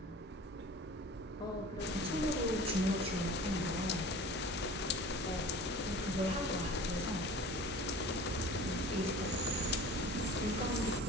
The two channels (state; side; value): normal; both; correlation 0.41